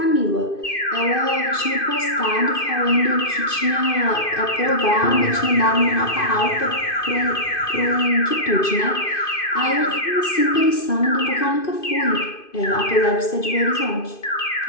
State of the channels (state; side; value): late; right; 2.5 ms